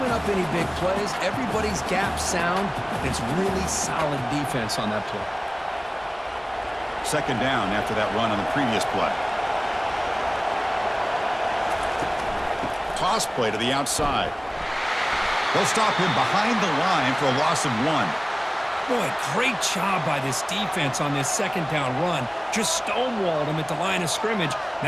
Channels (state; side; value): identical; both; correlation 1.00